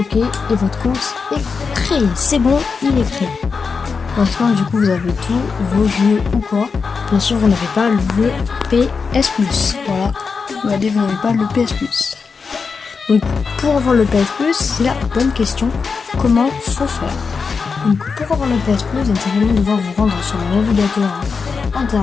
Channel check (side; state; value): right; quieter; 5.1 dB